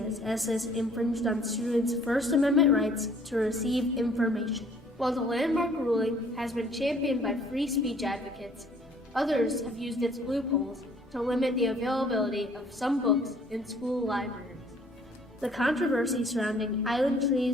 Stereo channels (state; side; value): normal; both; correlation 0.58